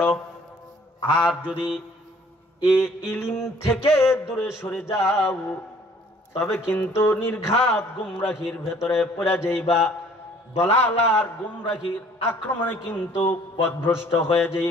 আর যদি এই ইলম থেকে দূরে সরে যাও, তবে কিন্তু নির্ঘাত গুমরাহির ভেতরে পড়ে যাইবা, দলালার গুমরাহির আক্রমণে কিন্তু পথভ্রষ্ট হয়ে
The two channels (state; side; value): normal; both; correlation 0.56